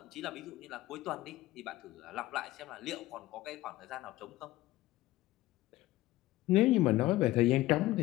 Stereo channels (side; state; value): right; quieter; 17.0 dB